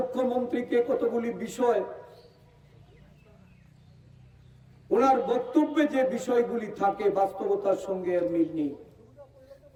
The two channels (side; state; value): both; identical; correlation 1.00